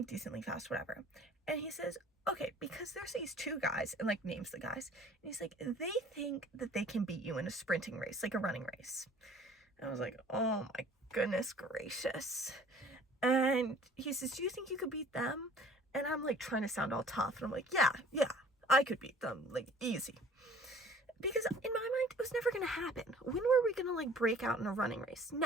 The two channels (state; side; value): normal; both; correlation 0.51